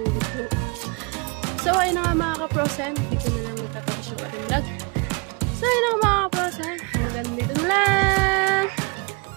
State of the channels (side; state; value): left; quieter; 30.1 dB